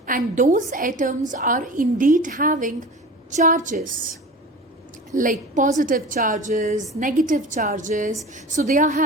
and those atoms are indeed having charges, like positive charges, negative charges. So they are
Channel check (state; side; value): normal; both; correlation 0.36